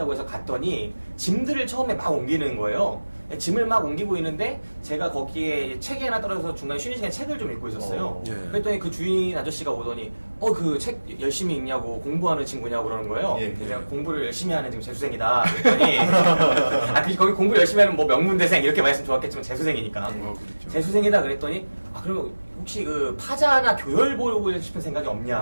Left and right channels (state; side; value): inverted; both; correlation -1.00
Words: 해서 갔더니 짐들을 처음에 막 옮기는 거예요. 짐을 막 옮기고 있는데 제가 거기에 책이 하나 떨어져서 중간에 쉬는 시간에 책을 좀 읽고 있었어요. 예. 그랬더니 그 주인 아저씨가 오더니 그 책 열심히 읽냐고 공부하는 친구냐고 그러는 거예요. 예. 그래서 제가 공부를 열심히 하는 지금 재수생이다 그랬더니 거기 공부 열심히 하는 뭐 명문대생 이렇게 말씀 좋았겠지만 재수생이니까 그렇죠. 재수생이다 그랬더니 그러면 혹시 그 파자나 교열 보고 싶은 생각이